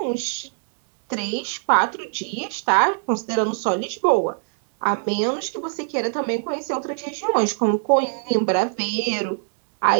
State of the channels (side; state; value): left; silent; digital silence